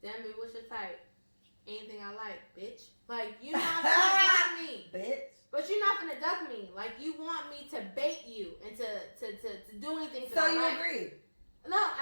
damn it, what's your type? Anything I like, bitch. Like, you're not gonna duck me. Bitch. But you're not gonna duck me. Like, you want me to bait you and to do anything. So you agree? No,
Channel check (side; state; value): both; inverted; correlation -1.00